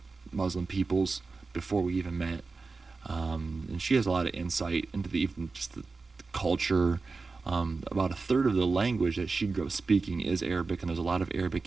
Muslim peoples before we even met. And she has a lot of insight into even just the culture. About a third of the language that she grew up speaking is Arabic, and there's a lot of Arabic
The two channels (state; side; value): quieter; left; 4.1 dB